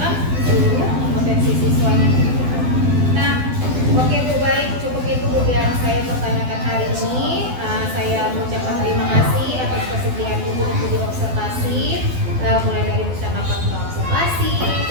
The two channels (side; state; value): left; late; 12 ms